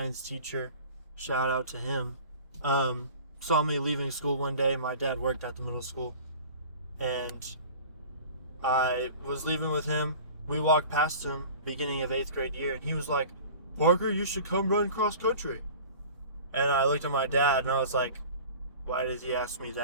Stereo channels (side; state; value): both; inverted; correlation -0.42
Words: teacher, shout out to him, saw me leaving school one day. My dad worked at the middle school, and I was leaving with him. We walked past him beginning of 8th grade year, and he was like, Parker, you should come run cross country. And I looked at my dad, and I was like, why did he ask me